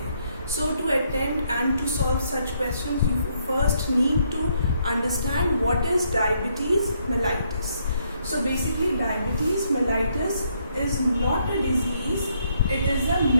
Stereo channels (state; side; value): inverted; both; correlation -0.73